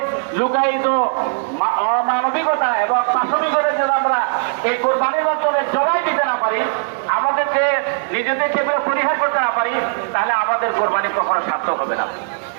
লুকায়িত অমানবিকতা এবং পাশবিকতা যদি আমরা এই কোরবানির মাধ্যমে জবাই দিতে না পারি, আমাদের যে নিজেদের সেগুলো পরিহার করতে না পারি, তাহলে আমাদের কোরবানি কখনো সার্থক হবে না।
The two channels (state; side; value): silent; left; 67 dB below the other